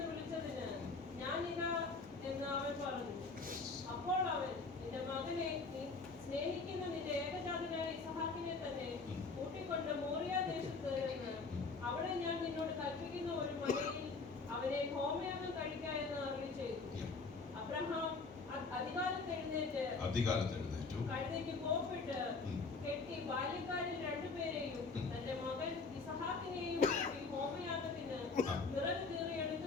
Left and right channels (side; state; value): right; quieter; 4.2 dB